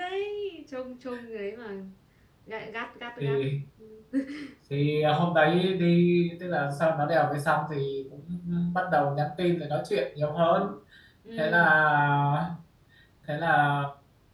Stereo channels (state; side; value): identical; both; correlation 1.00